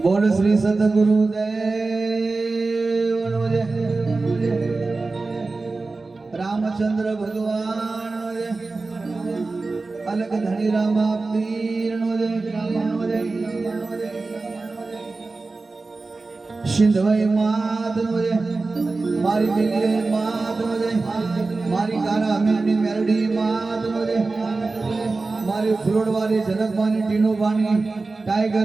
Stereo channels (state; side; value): quieter; left; 3.6 dB